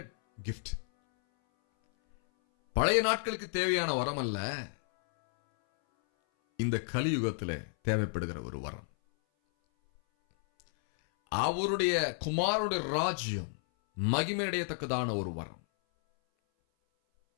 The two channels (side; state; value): right; silent; 57 dB below the other